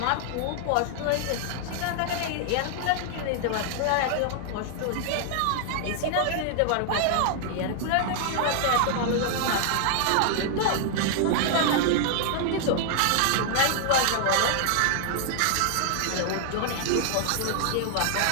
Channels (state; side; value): different; both; correlation -0.01